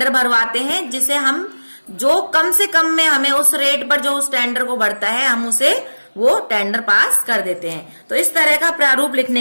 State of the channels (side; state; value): both; inverted; correlation -1.00